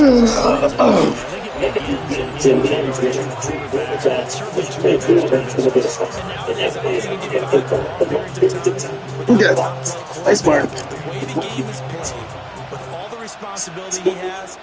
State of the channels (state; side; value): identical; both; correlation 1.00